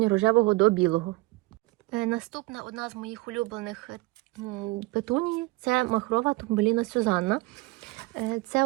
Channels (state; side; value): quieter; left; 22.6 dB